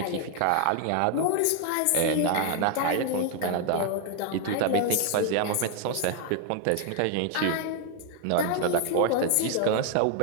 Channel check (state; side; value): different; both; correlation 0.00